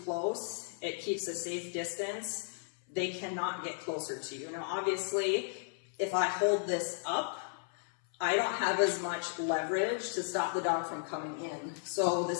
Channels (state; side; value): silent; right; 55 dB below the other